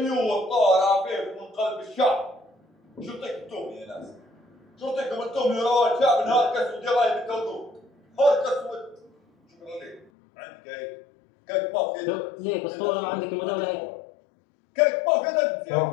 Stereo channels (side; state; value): right; drops out; at 10.1 s